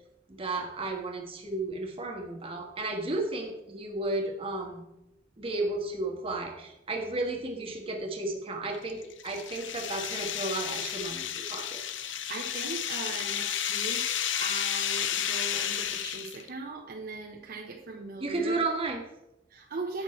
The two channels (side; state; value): both; normal; correlation 0.15